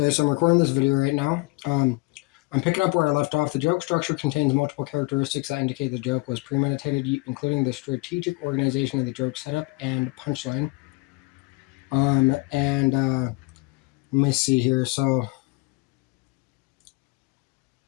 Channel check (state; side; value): quieter; right; 25.7 dB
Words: so I'm recording this video right now. I'm picking up where I left off. The joke structure contains multiple characteristics that indicate the joke was premeditated, including the strategic organization of the joke setup and punchline. Let me see here. So,